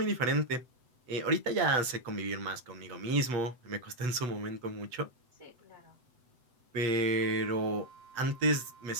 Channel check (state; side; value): late; left; 8.0 ms